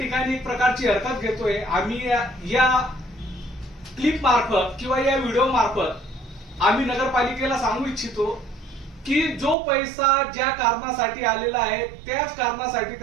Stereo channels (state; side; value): drops out; left; at 9.6 s